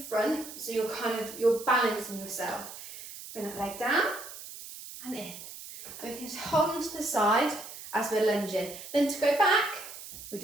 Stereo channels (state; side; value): noise; right; hiss, 13 dB below the sound